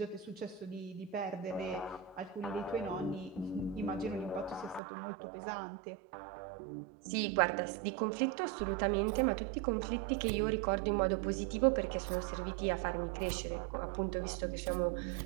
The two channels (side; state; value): left; drops out; at 4.8 s